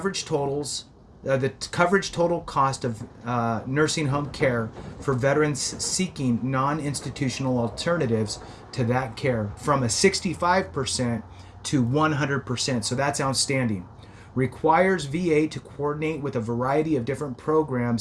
totals, the coverage total cost of nursing home care for veterans seeking non-institutional alternatives to that care from a 65% to 100%. So that's outstanding. Requires VA to coordinate with a variety of different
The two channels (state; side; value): identical; both; correlation 1.00